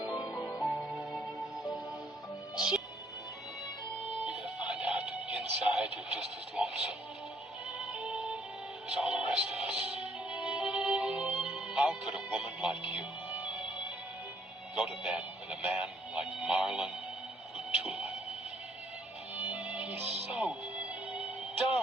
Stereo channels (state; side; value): normal; both; correlation 0.66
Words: You're gonna find out that inside you're just as lonesome as all the rest of us. How could a woman like you go to bed with a man like Marlon Utula? He's so